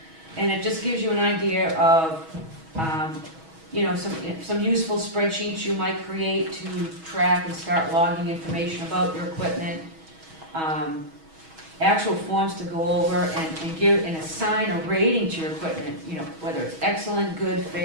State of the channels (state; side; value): late; left; 6.2 ms